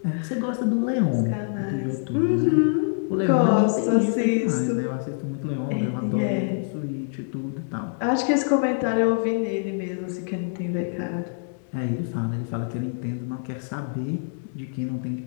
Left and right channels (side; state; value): right; silent; digital silence